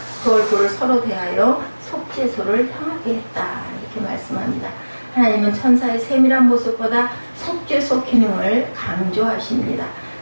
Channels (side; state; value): both; inverted; correlation -1.00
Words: 그 얼굴을 서로 대하여 속죄소를 향하게 했다. 이렇게 말씀합니다. 하나님은 천사의 세밀한 모습보다 속죄소 기능을 강조하십니다.